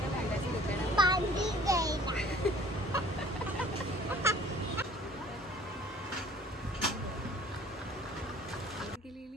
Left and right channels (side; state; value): both; normal; correlation 0.52